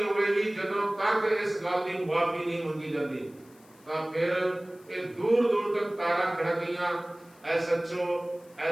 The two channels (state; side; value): noise; left; hiss, 28 dB below the sound